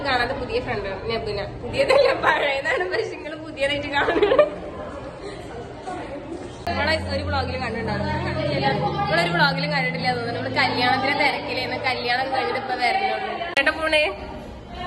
കാണാതെ പുതിയ ഫ്രണ്ട് നബുന. പുതിയതല്ല, പഴയതാണ്. പക്ഷെ നിങ്ങൾ പുതിയതായിട്ട് കാണുന്നത്. നമ്മളെ ഒരു വ്ളോഗിലും കണ്ടിട്ടുണ്ടാവും. നിങ്ങളൊരു വ്ളോഗിലും കണ്ടിട്ടില്ല തോന്നുന്നു. നമ്മള് കല്യാണത്തിന് തിരക്കിലേന്ന്. കല്യാണം കഴിഞ്ഞിട്ട് ഇപ്പൊ വരണുള്ളൂ. കേട്ടോ പോണേ.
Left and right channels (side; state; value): both; identical; correlation 1.00